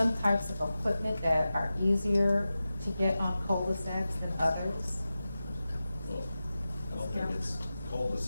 types of equipment that are easier to get on cul-de-sacs than others? Well, I don't think it's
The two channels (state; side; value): inverted; both; correlation -0.94